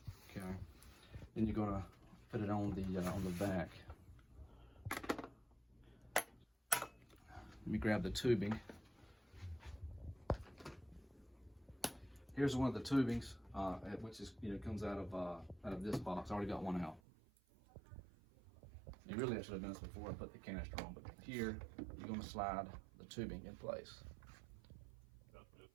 Okay. Then you're gonna put it on the vac. Let me grab the tubing. Here's one of the tubings, which is comes out of this box. I already got one out. And really, I should have done this before I put the canister on. But here, you're going to slide the tubing in place.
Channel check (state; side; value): drops out; left; at 17.0 s